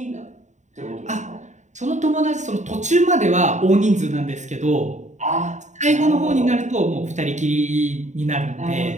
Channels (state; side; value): late; left; 0.34 ms